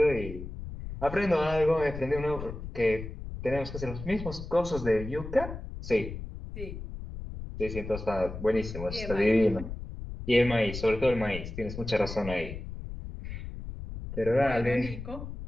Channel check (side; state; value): left; noise; rumble, 9 dB below the sound